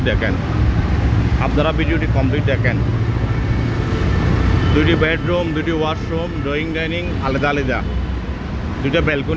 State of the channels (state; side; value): identical; both; correlation 1.00